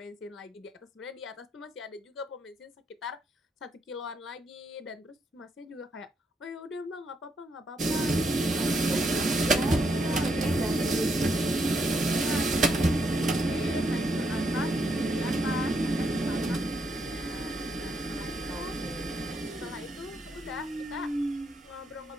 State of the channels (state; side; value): normal; both; correlation 0.77